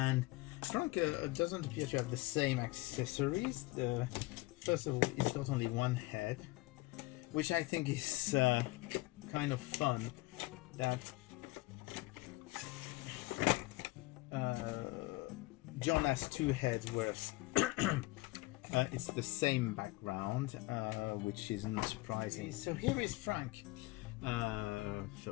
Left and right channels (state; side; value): quieter; right; 21.2 dB